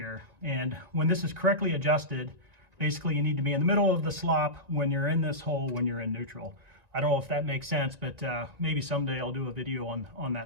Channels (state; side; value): late; left; 1.9 ms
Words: And when this is correctly adjusted, basically you need to be in the middle of the slop when you're in this hole when you're in neutral. I don't know if that makes sense, but maybe someday I'll do a video on